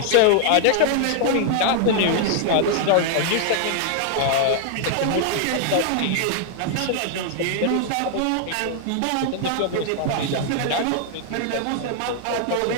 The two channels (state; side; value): different; both; correlation 0.00